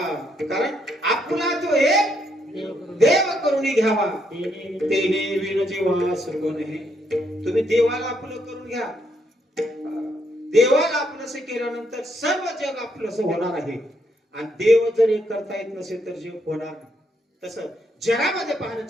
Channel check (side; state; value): both; normal; correlation 0.75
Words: कारण आपला तो एक देव करुणी घ्यावा तेने विण जीवा सुगुण हे. तुम्ही देवाला आपलं करून घ्या. देवाला आपलंस केल्यानंतर सर्व जग आपलंस होणार आहे. आणि देव जर एक करता येत नसेल तर जग होणार नाही. तसं जगामध्ये